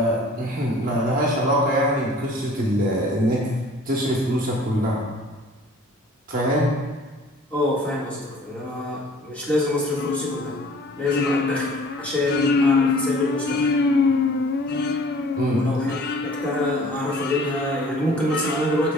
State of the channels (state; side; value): normal; both; correlation 0.50